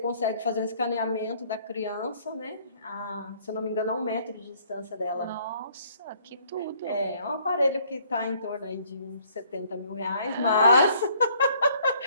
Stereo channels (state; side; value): inverted; both; correlation -0.62